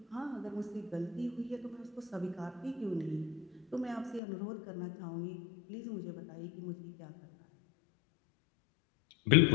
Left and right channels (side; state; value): right; drops out; at 4.2 s